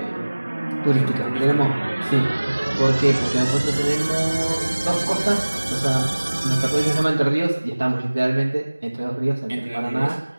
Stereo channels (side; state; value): both; inverted; correlation -1.00